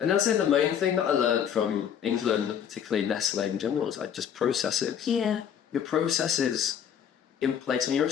And that's the main thing that I learned from England, particularly Nestle in general, is like just processes. Yeah. Your processes in place, when you're a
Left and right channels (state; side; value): quieter; right; 8.6 dB